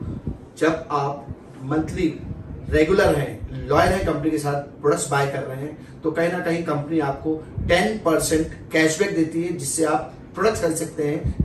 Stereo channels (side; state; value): both; identical; correlation 1.00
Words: जब आप मंथली रेगुलर हैं, लॉयल हैं कंपनी के साथ, प्रोडक्ट्स बाय कर रहे हैं, तो कहीं ना कहीं कंपनी आपको 10% कैशबैक देती है, जिससे आप प्रोडक्ट्स खरीद सकते हैं,